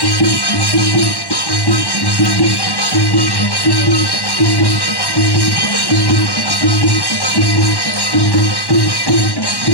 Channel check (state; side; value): late; right; 1.1 ms